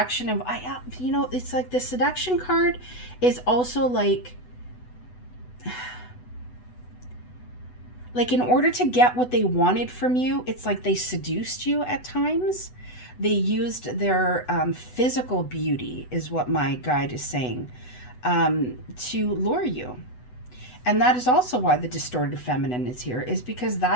of, you know, it's like the seduction card is also like in order to get what they wanted from you, it's like they seduced you at times. They used their physical beauty, is what my guide is saying, to lure you. And that is also why the distorted feminine is here, is because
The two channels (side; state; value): right; late; 8.1 ms